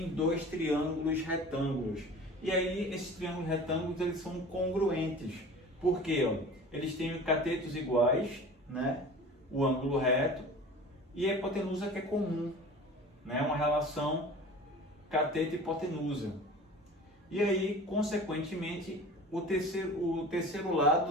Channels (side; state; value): both; normal; correlation 0.40